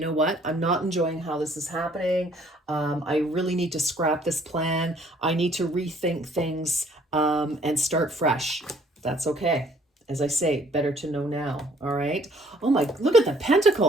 what? I'm not enjoying how this is happening. I really need to scrap this plan. I need to rethink things and start fresh. That's okay. As I say, better to know now. All right. Oh my, look at the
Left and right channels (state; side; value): normal; both; correlation 0.60